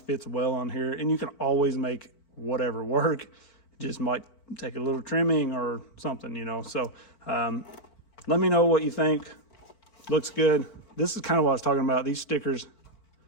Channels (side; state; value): right; late; 4.5 ms